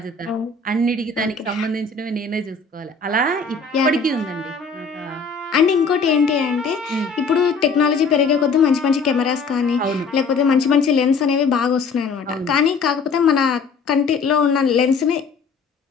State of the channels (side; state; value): right; quieter; 4.7 dB